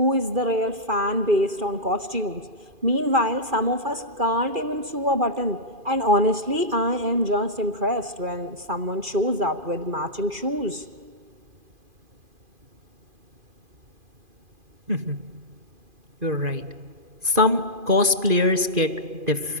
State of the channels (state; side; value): late; left; 2.5 ms